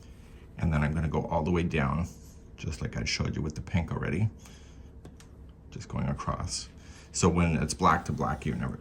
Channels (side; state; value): both; identical; correlation 1.00